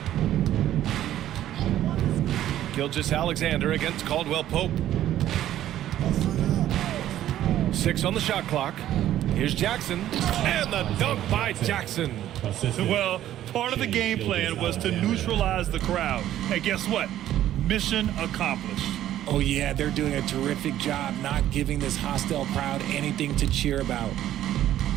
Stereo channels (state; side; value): quieter; left; 12.5 dB